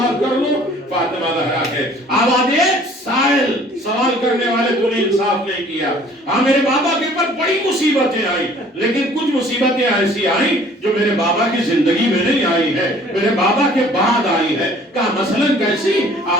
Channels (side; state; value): both; normal; correlation 0.54